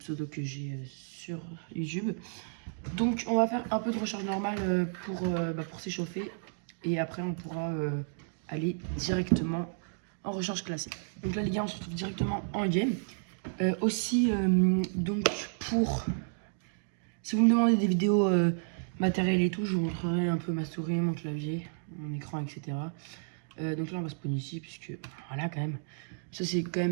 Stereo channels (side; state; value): left; silent; digital silence